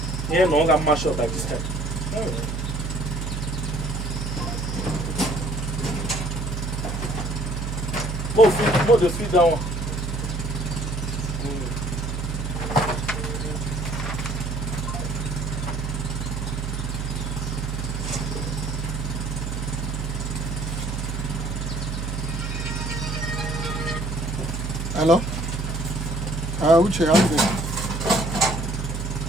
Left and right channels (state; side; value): noise; right; hum, 3 dB below the sound